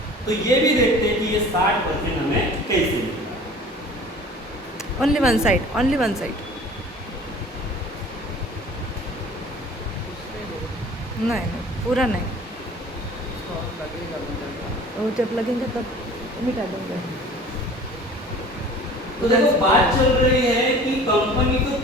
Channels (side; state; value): both; normal; correlation 0.45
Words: तो ये भी देखते हैं कि ये 60% हमें कैसे मिलेगा। Only one side. नहीं, पूरा नहीं, वो जब लगेंगे तब मिटा देंगे। तो देखो बात चल रही है कि कंपनी तो